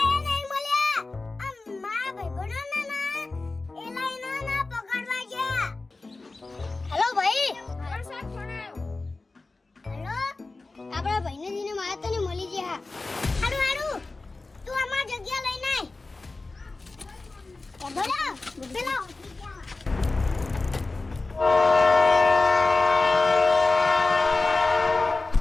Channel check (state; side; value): quieter; right; 3.4 dB